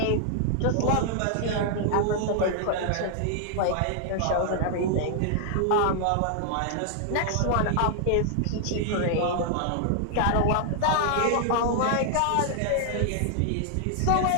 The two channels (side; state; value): both; different; correlation 0.00